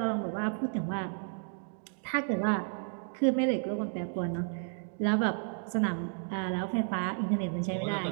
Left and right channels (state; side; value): silent; left; 56 dB below the other